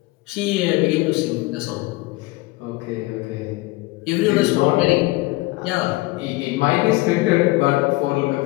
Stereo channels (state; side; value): quieter; right; 21.5 dB